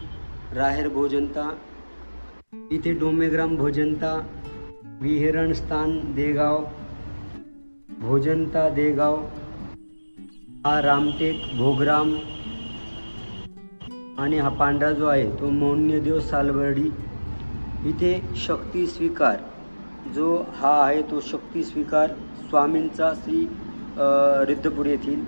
राहेर भोजनता, इथे डोमेग्राम भोजनता, विहरण स्थान देगाव, भोजनता देगाव, हा रामटेक भोगराम, आणि हा पांढरा जो आहे तो मौन्यदेव सालबर्डी। इथे शक्ती स्वीकार जो हा आहे तो शक्ती स्वीकार स्वामींचा श्री रुद्रपूर येथील,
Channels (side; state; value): both; inverted; correlation -1.00